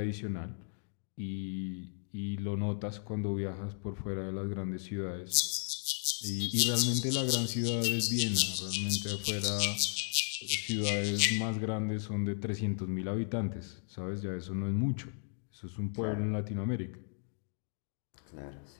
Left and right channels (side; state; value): right; silent; digital silence